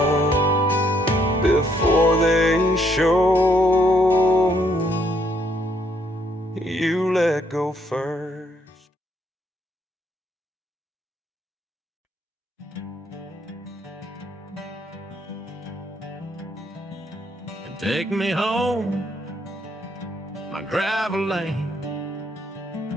before they show. You let go first. Take me home, my gravel lane.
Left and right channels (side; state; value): both; normal; correlation 0.71